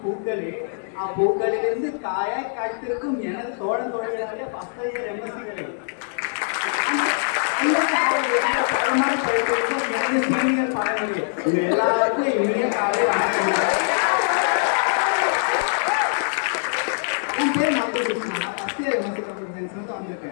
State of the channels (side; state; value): right; silent; digital silence